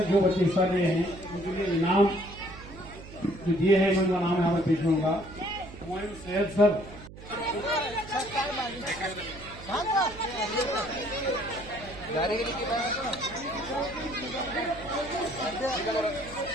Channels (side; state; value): right; noise; hum, 16 dB below the sound